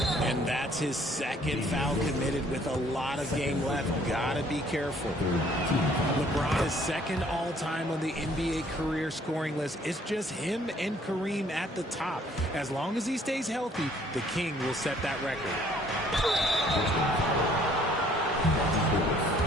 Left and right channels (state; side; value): normal; both; correlation 0.60